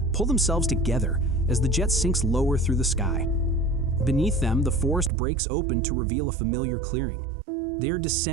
themselves together as the jet sinks lower through the sky. Beneath them, the forest breaks open to reveal a familiar clearing. They are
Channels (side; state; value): left; drops out; at 5.1 s